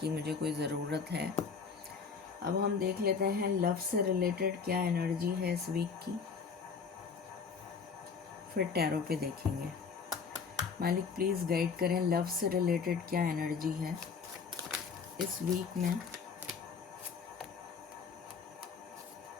मुझे कोई ज़रूरत है। अब हम देख लेते हैं लव से रिलेटेड क्या एनर्जी है इस वीक की, फिर टैरो पे देखेंगे। मालिक प्लीज़ गाइड करें, लव से रिलेटेड क्या एनर्जी है इस वीक में।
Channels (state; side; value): quieter; right; 5.6 dB